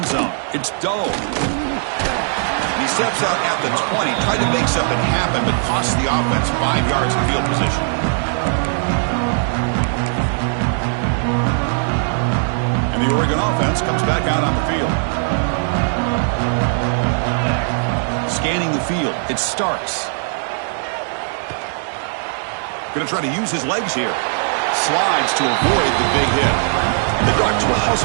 zone. It's Doe. He steps out at the 20, tried to make something happen, but cost the offense 5 yards of field position. And the Oregon offense comes back out on the field. Scanning the field. It's Starks. Going to try to use his legs here. Slides to avoid the big hit. The Ducks will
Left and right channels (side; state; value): left; silent; 67 dB below the other